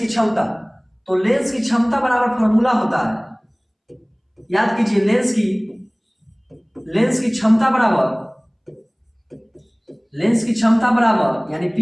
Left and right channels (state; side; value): identical; both; correlation 1.00